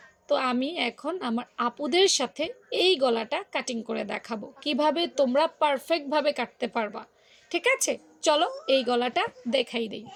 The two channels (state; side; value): identical; both; correlation 1.00